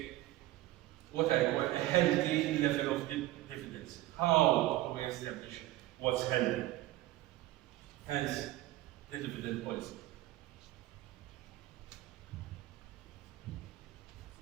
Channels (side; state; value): left; quieter; 16.5 dB